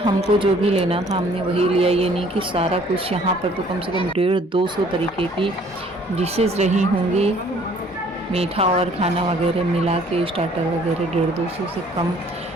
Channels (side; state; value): both; normal; correlation 0.57